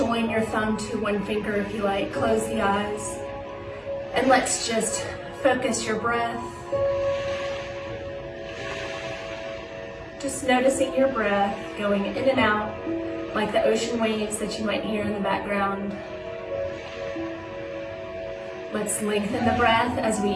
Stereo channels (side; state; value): both; identical; correlation 1.00